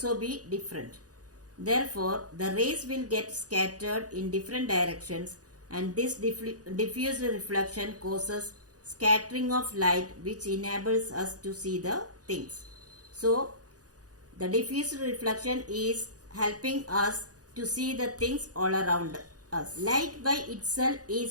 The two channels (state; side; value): late; left; 0.67 ms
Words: be different. Therefore, the rays will get scattered in different directions, and this diffuse reflection causes scattering of light, which enables us to see the things. So, the diffuse reflection is helping us to see the things all around us. Light by itself